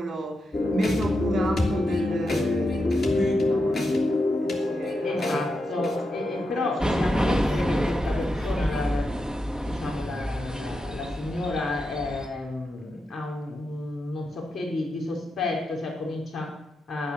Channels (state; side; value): normal; both; correlation 0.87